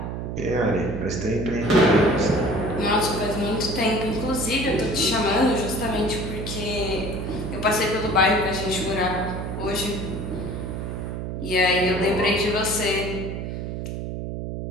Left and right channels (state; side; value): noise; right; hum, 5 dB below the sound